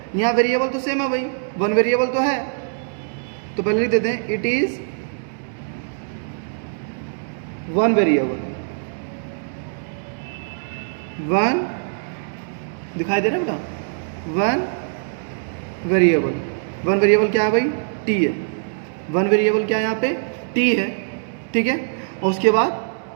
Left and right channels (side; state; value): left; silent; digital silence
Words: यहाँ वेरिएबल तो सेम है भाई, वन वेरिएबल तो है, तो पहले लिख देते हैं it is one variable. One दिखाई दे रहा है बेटा? One variable. वन वेरिएबल क्या है भाई? टी है। वन वेरिएबल क्या है यहाँ पे? टी है, ठीक है। और उसके बाद